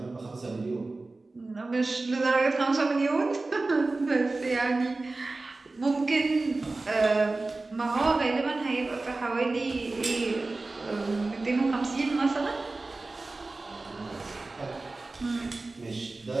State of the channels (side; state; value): left; quieter; 3.3 dB